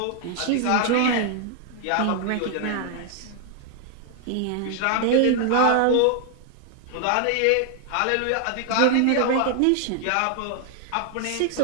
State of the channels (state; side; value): different; both; correlation 0.00